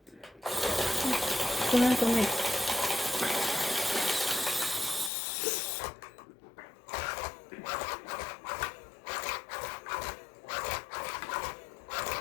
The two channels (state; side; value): drops out; right; at 5.1 s